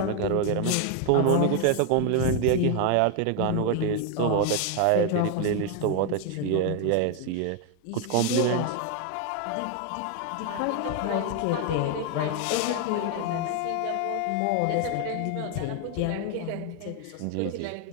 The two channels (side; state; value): both; different; correlation 0.01